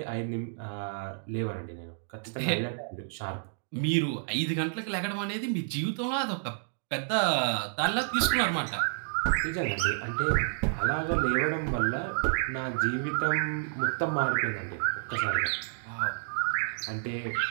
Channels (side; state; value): left; silent; digital silence